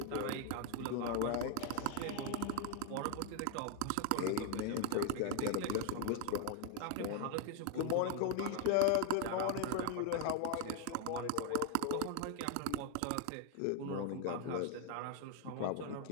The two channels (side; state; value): both; different; correlation 0.00